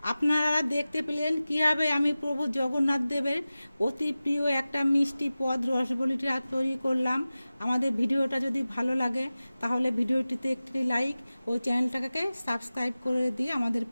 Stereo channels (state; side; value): inverted; both; correlation -0.96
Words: আপনারা দেখতে পেলেন কিভাবে আমি প্রভু জগন্নাথ দেবের অতি প্রিয় একটা মিষ্টি পদ রসবলিটা তৈরি করলাম। আমাদের ভিডিওটা যদি ভালো লাগে তাহলে ভিডিওটিতে একটি লাইক ও চ্যানেলটাকে সাবস্ক্রাইব করে দিয়ে আমাদের